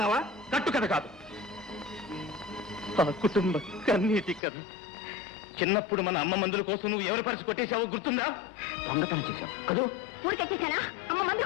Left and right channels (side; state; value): right; drops out; at 4.4 s